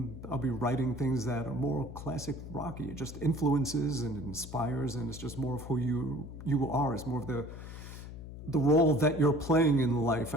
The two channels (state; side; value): noise; left; hum, 12 dB below the sound